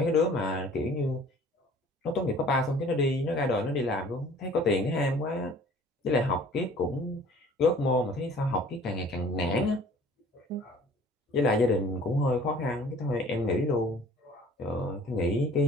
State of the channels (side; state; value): both; normal; correlation 0.51